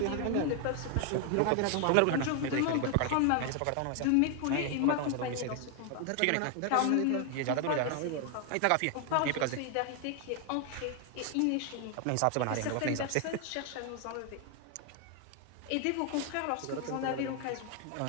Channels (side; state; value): both; different; correlation 0.00